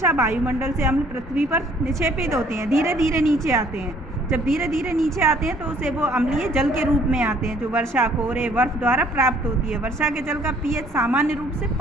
वायुमंडल से अम्ल पृथ्वी पर निक्षेपित होते हैं, धीरे धीरे नीचे आते हैं। जब धीरे धीरे नीचे आते हैं तो उसे वो अम्लीय जल के रूप में आते हैं, जो वर्षा, कोहरे, बर्फ द्वारा प्राप्त होती है। वर्षा के जल का pH सामान्य रूप से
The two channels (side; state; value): both; normal; correlation 0.60